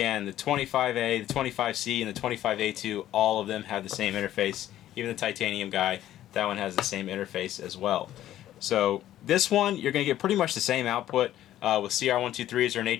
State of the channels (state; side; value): quieter; right; 12.8 dB